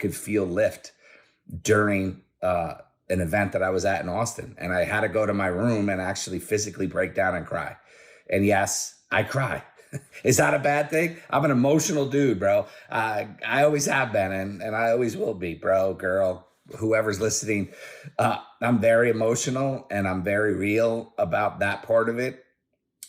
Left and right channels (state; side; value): identical; both; correlation 1.00